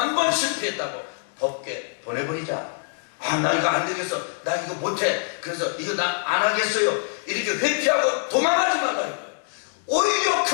번 실패했다고 법궤 보내버리자. 나 이거 안 되겠어. 나 이거 못해. 그래서 이거 나 안 하겠어요. 이렇게 회피하고 도망가지 말아요. 오히려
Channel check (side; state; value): right; silent; digital silence